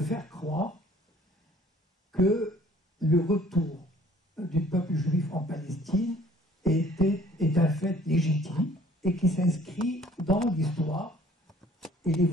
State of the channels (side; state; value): both; normal; correlation 0.55